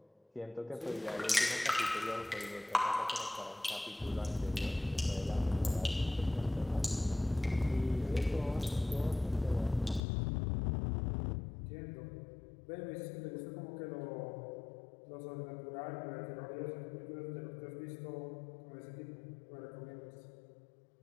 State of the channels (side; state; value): right; drops out; at 10.0 s